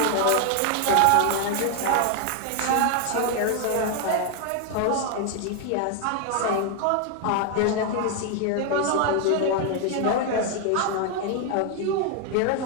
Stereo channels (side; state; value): both; different; correlation 0.01